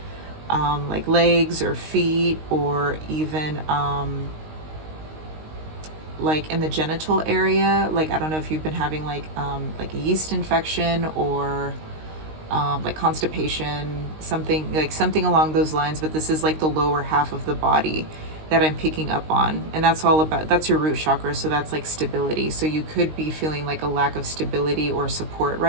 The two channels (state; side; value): late; left; 19 ms